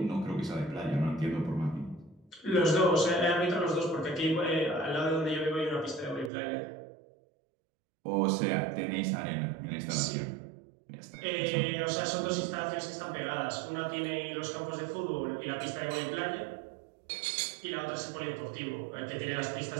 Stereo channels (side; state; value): left; drops out; at 6.3 s